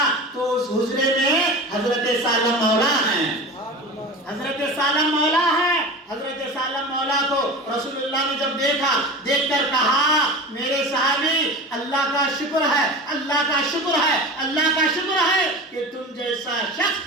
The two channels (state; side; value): normal; both; correlation 0.31